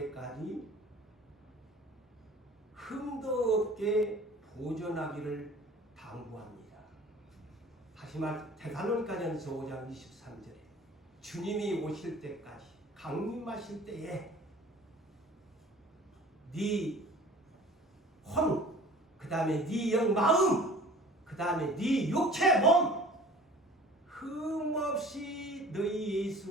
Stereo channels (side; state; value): both; normal; correlation 0.46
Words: 흠도 없게 보존하기를 당부합니다. 다시 말 데살로니가전서 5장 23절에 주님이 오실 때까지 강림하실 때에 네 혼, 그 다음에 네 영 마음, 그 다음에 네 육체 몸 흠없이 너희